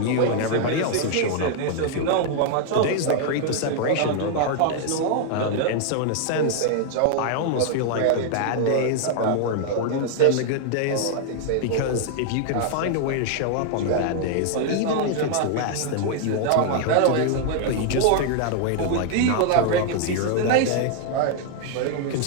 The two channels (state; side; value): different; both; correlation 0.00